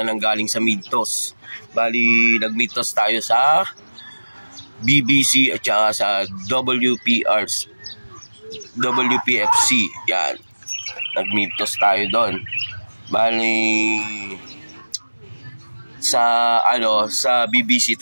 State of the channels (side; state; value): both; inverted; correlation -1.00